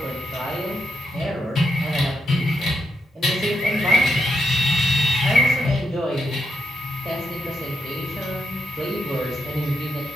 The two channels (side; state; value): both; normal; correlation 0.81